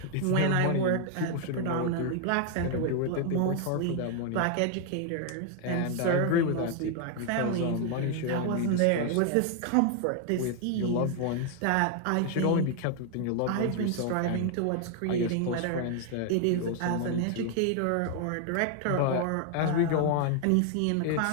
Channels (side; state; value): both; different; correlation 0.00